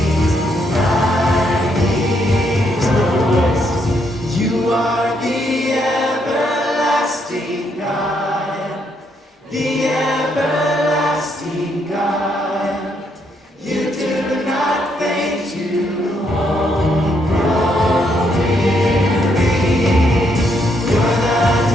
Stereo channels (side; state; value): both; normal; correlation 0.74